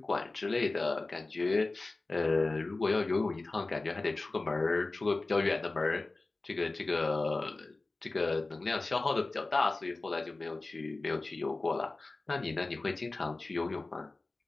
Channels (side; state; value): right; quieter; 3.3 dB